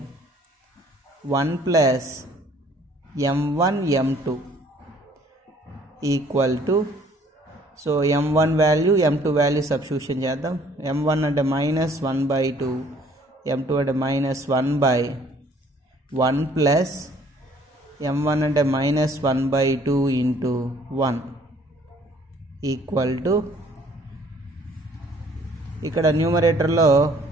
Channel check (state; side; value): normal; both; correlation 0.59